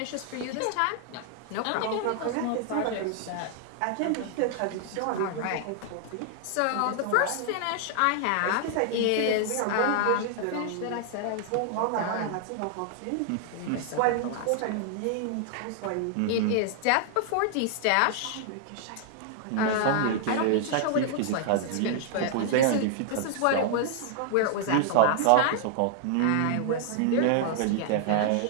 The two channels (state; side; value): different; both; correlation 0.00